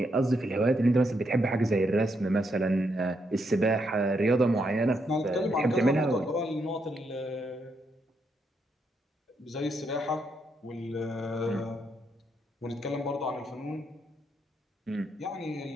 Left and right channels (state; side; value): normal; both; correlation 0.78